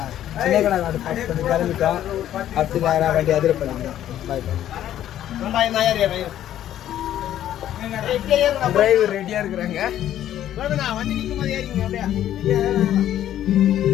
சின்ன கடை நாடு பார்த்து பண்ணி கிளம்பிட்டோம். அடுத்து நேராக வண்டி அதிர பண்ணிக்கிறோம். பாய் டிரைவர் ரெடியாக இருக்கிறாங்க. வண்டி நிற்கும் போது ஏறிங்க அப்படியே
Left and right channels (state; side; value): quieter; right; 11.7 dB